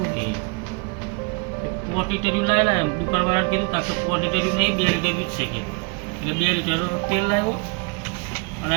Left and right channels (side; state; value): left; quieter; 33.4 dB